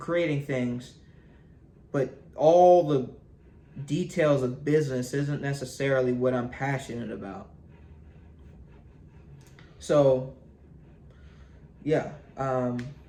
things, but all the details of business isn't necessarily what I'm passionate about. So, yeah,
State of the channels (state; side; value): identical; both; correlation 1.00